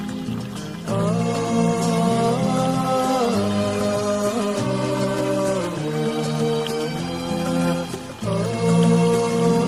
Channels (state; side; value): identical; both; correlation 1.00